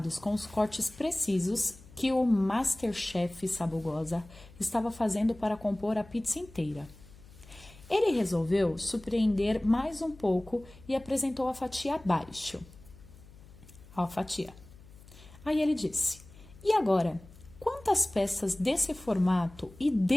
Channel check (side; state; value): left; noise; hum, 22 dB below the sound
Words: com os cortes precisos que o Masterchef Sabugosa estava fazendo para compor a pizza inteira. Ele resolveu surpreender mais um pouco e apresentou a fatia abaixo. A fatia. Aí ele disse: "E agora, quantas peças desse formato e